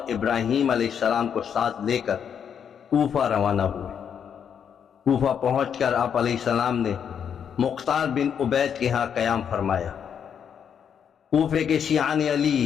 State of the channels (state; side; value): quieter; right; 7.9 dB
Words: ابراہیم علیہ السلام کو ساتھ لے کر کوفہ روانہ ہوئے۔ کوفہ پہنچ کر آپ علیہ السلام نے مختار بن عبید کے ہاں قیام فرمایا۔ کوفے کے شیعان